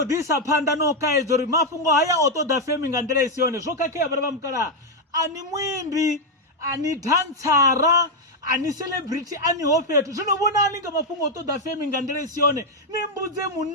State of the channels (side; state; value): both; normal; correlation 0.01